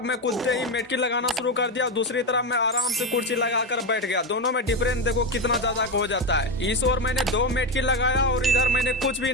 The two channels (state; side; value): normal; both; correlation 0.13